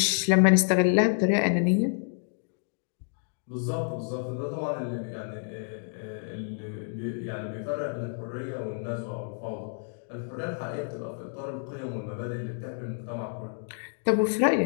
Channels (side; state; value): right; silent; 59 dB below the other